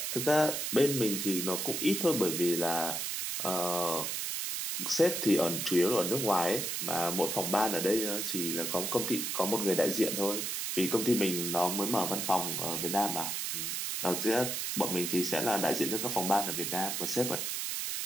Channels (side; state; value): right; noise; hiss, 2 dB below the sound